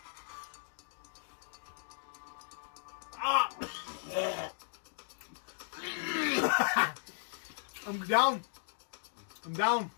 I'm down. I'm down.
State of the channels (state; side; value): silent; right; digital silence